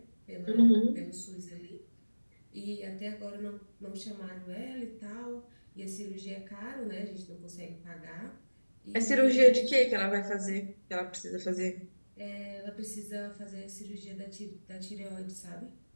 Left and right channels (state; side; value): inverted; both; correlation -1.00